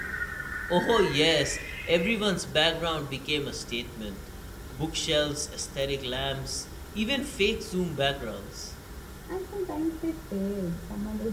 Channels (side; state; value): both; identical; correlation 1.00